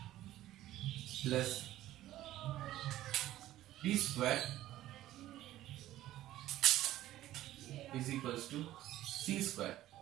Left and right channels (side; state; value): left; quieter; 14.4 dB